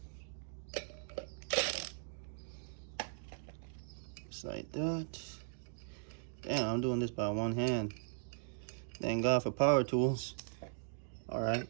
Just like that. Damn, I'm doing this by one hand. Thank God for power tools. All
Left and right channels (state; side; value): silent; left; digital silence